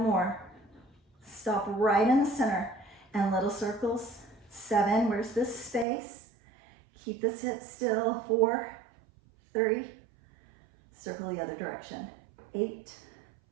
more. Stop right in the center and little circles. 7, where's this space? Keep this hip still. 4, 3, circle the other direction. 8,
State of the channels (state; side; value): drops out; left; at 5.9 s